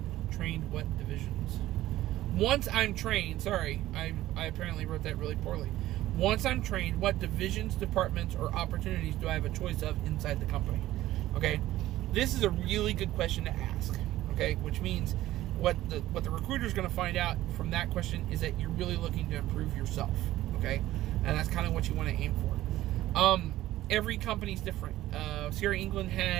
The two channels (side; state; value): left; quieter; 15.0 dB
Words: trained, what divisions? Once I'm trained, sorry, I apparently wrote that really poorly. Once I'm trained, what divisions, departments, or opportunities do I have a choice of inside the company? Okay, this is a really good question to ask. Okay, which means what the recruiter is going to find out from that question is that you're really looking to improve yourself. Okay, and that's kind of what you want to aim for. Every company's different. Sierra England